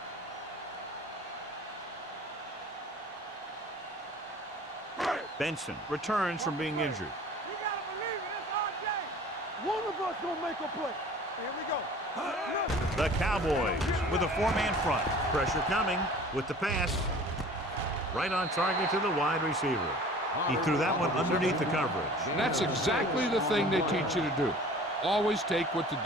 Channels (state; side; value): normal; both; correlation 0.45